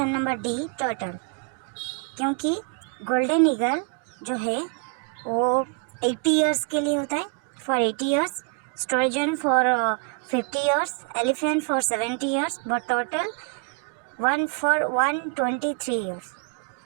number D, turtle. क्योंकि golden eagle जो है वो 80 years के लिए होता है, for 80 years, sturgeon for 50 years, elephant for 70 years, but turtle one for 123 years.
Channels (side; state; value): left; quieter; 36.3 dB